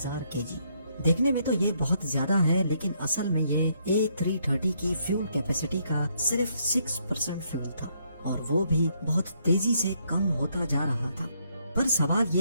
केजी। देखने में तो ये बहुत ज्यादा है, लेकिन असल में ये A330 की फ्यूल कैपेसिटी का सिर्फ 6% फ्यूल था और वो भी बहुत तेजी से कम होता जा रहा था। पर सवाल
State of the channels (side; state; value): both; inverted; correlation -0.73